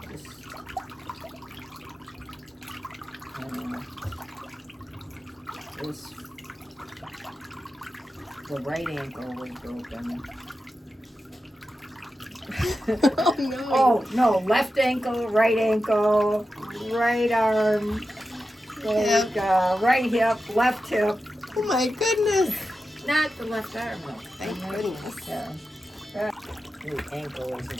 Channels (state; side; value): normal; both; correlation 0.91